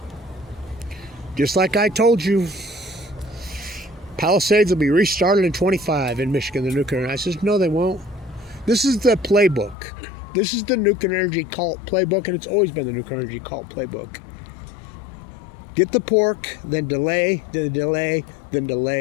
just like I told you, Palisades will be restarted in 25 in Michigan, the nuclear. And I says, no, they won't. This is the playbook. This is the nuclear energy cult playbook, and it's always been the nuclear energy cult playbook. Get the pork, then delay, then delay, then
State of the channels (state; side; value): drops out; right; at 9.8 s